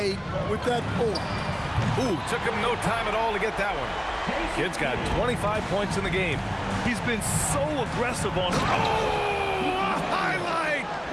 with that pull. Ooh, took him no time at all to get that one. Kid's got 25 points in the game. He's been so aggressive on... Oh, a highlight!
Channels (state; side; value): identical; both; correlation 1.00